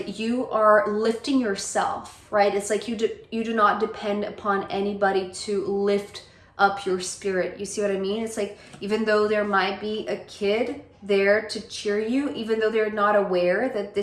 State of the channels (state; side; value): identical; both; correlation 1.00